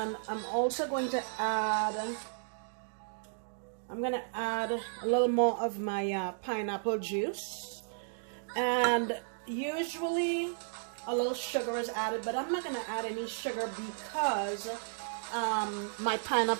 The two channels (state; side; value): silent; left; digital silence